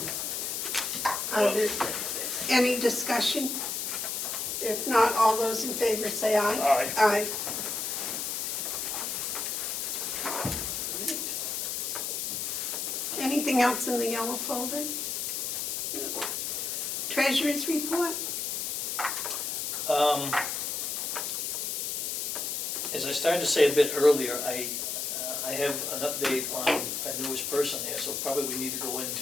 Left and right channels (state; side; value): noise; left; hiss, 2 dB below the sound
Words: There any discussion? If not, all those in favor say aye. Aye. Aye. Anything else in the yellow folder? No. Treasurer's report? As I started to say a bit earlier, I have an update on our newest person here, so probably we need to go